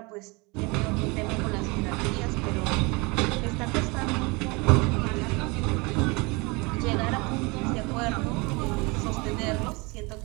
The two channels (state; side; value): quieter; left; 27.0 dB